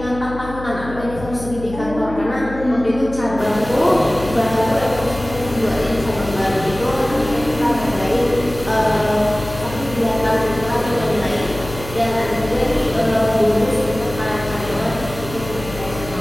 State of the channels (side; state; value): left; noise; hum, 12 dB below the sound